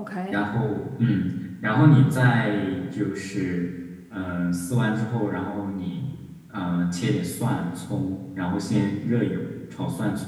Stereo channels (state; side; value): identical; both; correlation 1.00